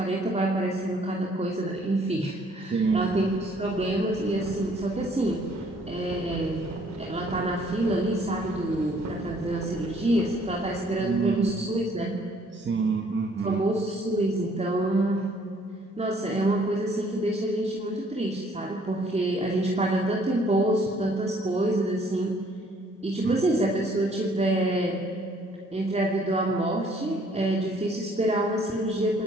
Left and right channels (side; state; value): both; normal; correlation 0.62